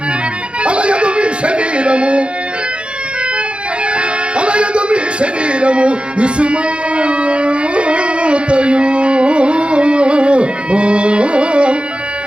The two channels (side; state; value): left; late; 0.057 ms